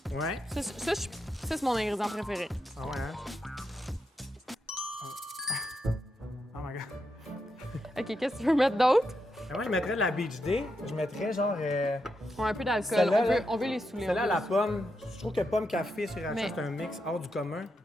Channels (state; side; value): normal; both; correlation 0.84